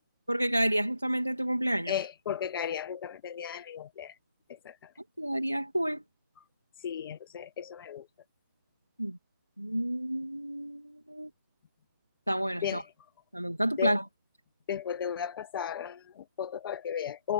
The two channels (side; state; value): both; inverted; correlation -0.78